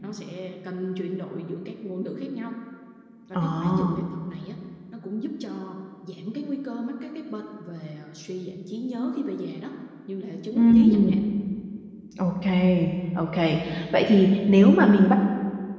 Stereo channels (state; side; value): identical; both; correlation 1.00